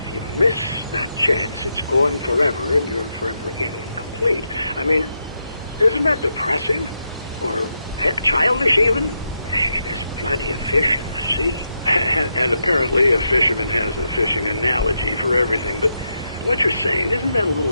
you miss that chance, it's gone forever, and you're forever incomplete. I mean, isn't that depressing? Or heck, childish even? There's plenty of fish in the sea. And apparently a fisherman has a fishing analogy for everything, but what you're saying, isn't that a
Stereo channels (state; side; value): inverted; both; correlation -0.84